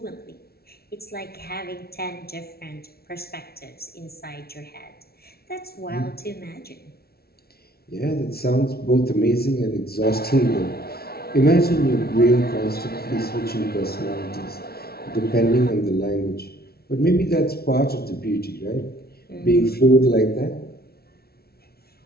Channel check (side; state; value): right; late; 0.45 ms